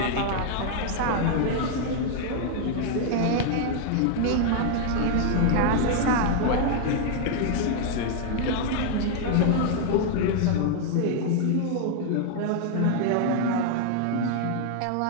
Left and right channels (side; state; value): both; different; correlation 0.00